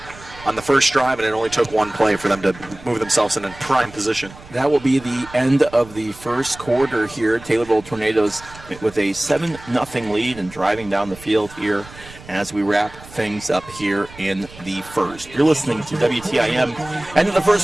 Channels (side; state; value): right; noise; rumble, 19 dB below the sound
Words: on the first drive, and it only took 1 play for them to move themselves in a prime position. That will be the end of the first quarter here. Taylorville Tornadoes with a 7-0 lead and driving down the field here as we wrap things up here in the first. You're listening to WTIM. End of the